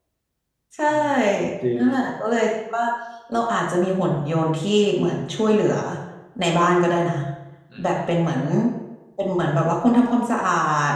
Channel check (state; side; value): identical; both; correlation 1.00